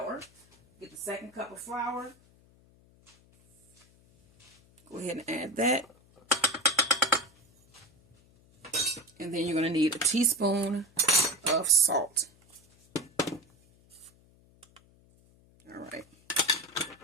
Get the second cup of flour. Go ahead and add that. And then you're going to need a teaspoon of salt. All right.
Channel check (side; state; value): left; noise; hum, 30 dB below the sound